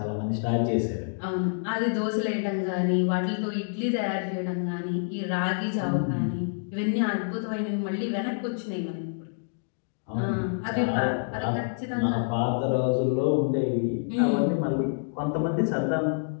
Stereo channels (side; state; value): right; silent; digital silence